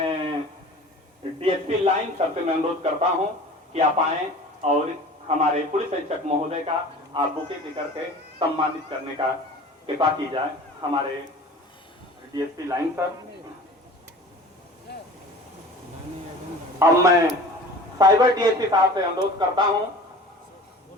डीएसपी लाइन सर से मैं अनुरोध करता हूं कि आप आएं और हमारे पुलिस अधीक्षक महोदय का आप बुके देकर के सम्मानित करने का कृपा की जाए। हमारे डीएसपी लाइन सर। अब मैं साइबर डीएसपी साहब से अनुरोध करता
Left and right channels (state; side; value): normal; both; correlation 0.41